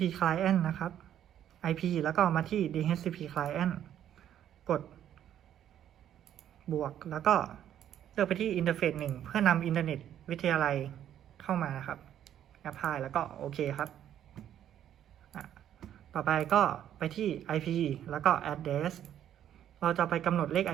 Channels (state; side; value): quieter; left; 10.6 dB